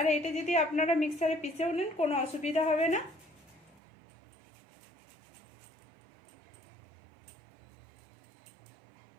এটা যদি আপনারা মিক্সারে পিষেও নেন কোনো অসুবিধা হবে না।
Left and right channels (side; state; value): left; drops out; at 3.8 s